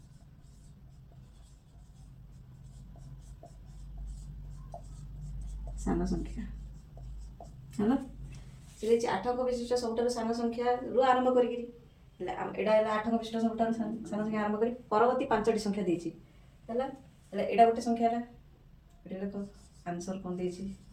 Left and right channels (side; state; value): both; identical; correlation 1.00